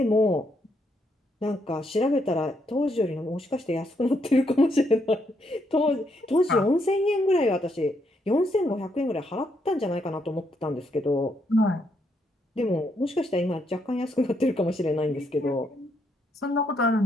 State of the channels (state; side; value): normal; both; correlation 0.76